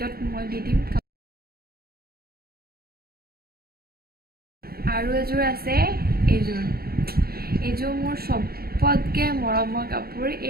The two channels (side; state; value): left; late; 0.44 ms